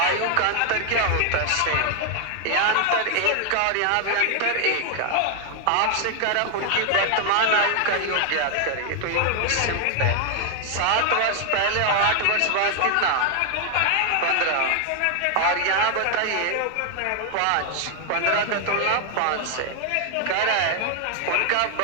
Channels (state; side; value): different; both; correlation 0.00